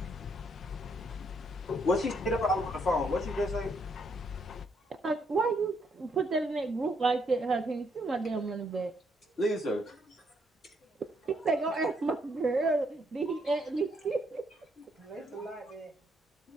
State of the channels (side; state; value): both; normal; correlation 0.73